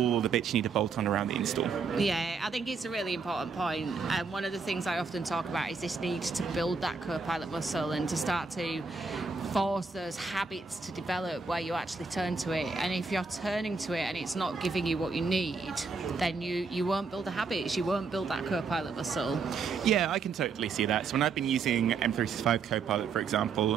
the bits you need to bolt on around the install. Yeah, I think it's a really important point. And one of the things I often talk about is this need to build that Copilot muscle and to start to force those habits to develop where you actually turn to it. And if you're turning to it and it's not giving you what you need, then you won't build the habits, you won't build that Copilot muscle. Yeah, I can totally see that. So when I've been using M365 Copilot, for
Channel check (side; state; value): left; quieter; 4.8 dB